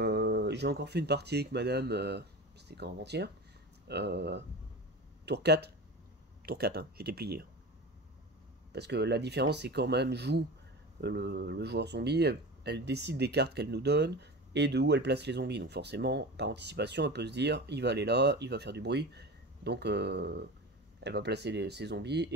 J'ai encore fait une partie avec madame, c'était quand avant-hier, tour 4, hein, j'étais plié. Parce que la différence, c'est quand même joue le joueur zombie, elle décide des cartes qu'elle nous donne et de où elle place les zombies. Donc forcément, par anticipation, elle peut se dire, il va aller là, il va faire du bruit. Donc elle va placer ses zombies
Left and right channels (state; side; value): normal; both; correlation 0.30